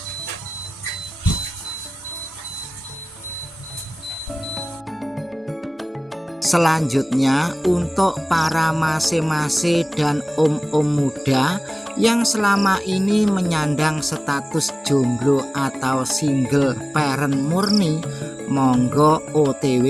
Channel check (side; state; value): both; normal; correlation 0.98